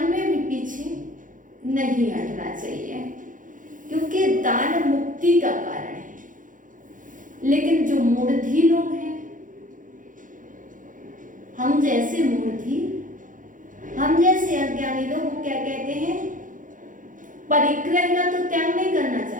में भी पीछे नहीं हटना चाहिए, क्योंकि दान मुक्ति का कारण है। लेकिन जो मूढ़ी लोग हैं, हम जैसे मूढ़ी, हम जैसे अज्ञानी लोग, वो क्या कहते हैं? परिग्रह का तो त्याग नहीं करना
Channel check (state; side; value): late; left; 0.38 ms